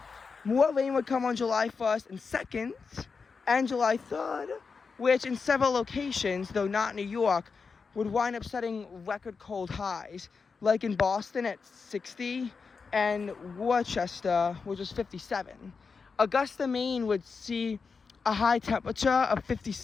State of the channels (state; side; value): quieter; right; 5.1 dB